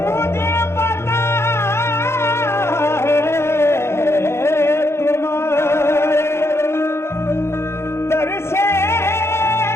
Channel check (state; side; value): late; right; 0.13 ms